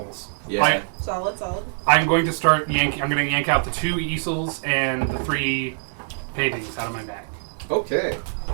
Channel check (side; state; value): left; silent; 63 dB below the other